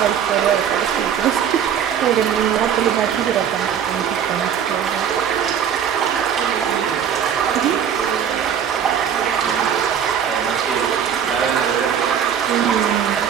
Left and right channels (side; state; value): left; quieter; 8.4 dB